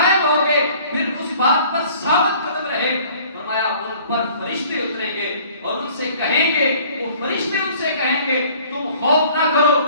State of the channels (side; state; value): both; inverted; correlation -0.53